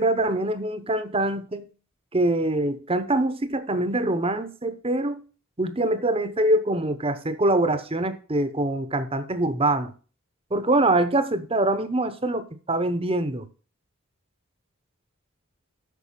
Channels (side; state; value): both; normal; correlation 0.34